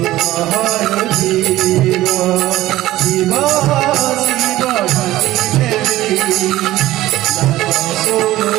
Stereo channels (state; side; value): quieter; left; 15.9 dB